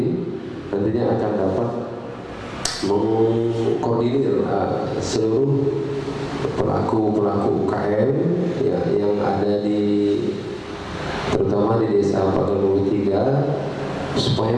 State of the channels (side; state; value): both; identical; correlation 1.00